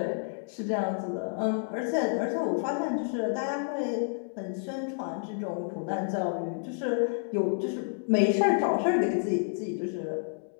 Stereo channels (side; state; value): right; silent; digital silence